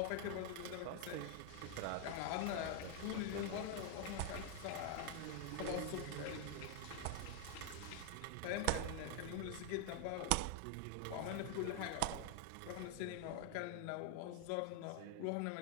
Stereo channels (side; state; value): both; different; correlation 0.00